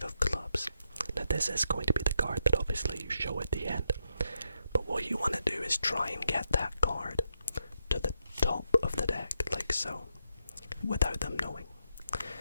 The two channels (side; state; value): both; inverted; correlation -0.82